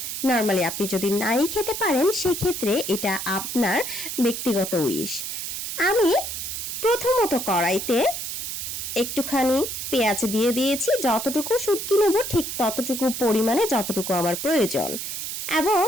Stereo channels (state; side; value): noise; right; hiss, 5 dB below the sound